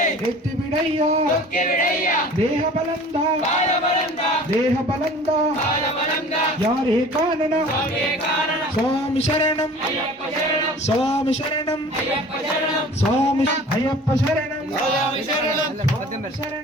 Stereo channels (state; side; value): normal; both; correlation 0.45